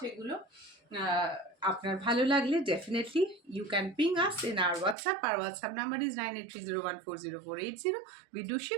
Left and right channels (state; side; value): drops out; left; at 5.0 s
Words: এগুলো। আপনার ভালো লাগলে definitely you can ping us in our WhatsApp. Our WhatsApp number is 9830140480. We do